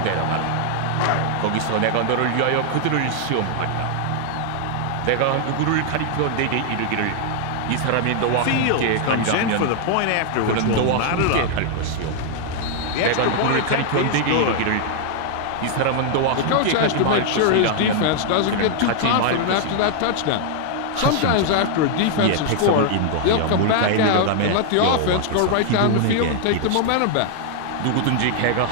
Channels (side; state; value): both; different; correlation 0.00